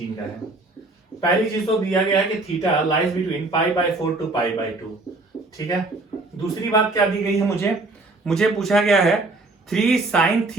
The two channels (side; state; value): left; quieter; 3.1 dB